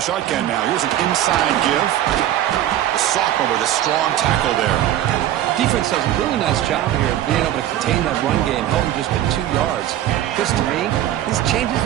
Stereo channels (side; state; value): left; quieter; 12.5 dB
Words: shotgun now, here's an inside give. The sophomore with a strong tackle there. Defense does a really nice job here of being able to contain that run game, held him just at 2 yards. This, to me, this changes